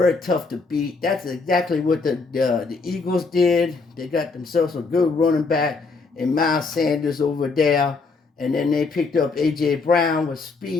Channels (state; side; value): quieter; right; 4.2 dB